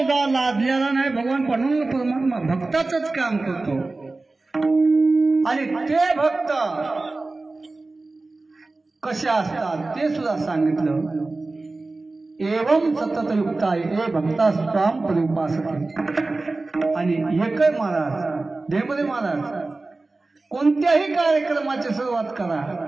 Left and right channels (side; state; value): left; quieter; 3.3 dB